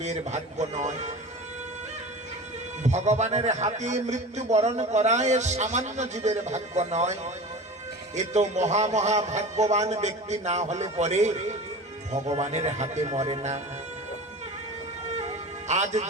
ভাগ্য নয়। ভগবানের হাতে মৃত্যুবরণ করা এই সামান্য জীবের ভাগ্য নয়। এ তো মহা মহা ভাগ্যবান ব্যক্তি না হলে পরে ভগবানের হাতে মরে না। আজ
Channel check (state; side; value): normal; both; correlation 0.34